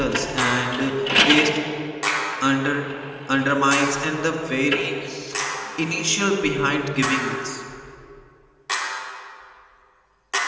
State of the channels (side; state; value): both; identical; correlation 1.00